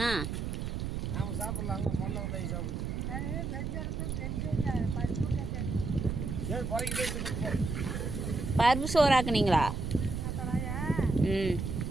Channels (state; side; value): noise; right; rumble, 3 dB below the sound